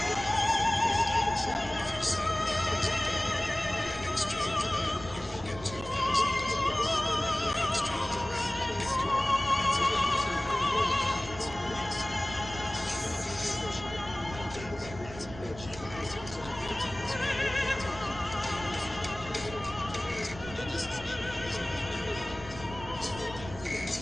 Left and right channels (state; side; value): noise; right; rumble, 14 dB below the sound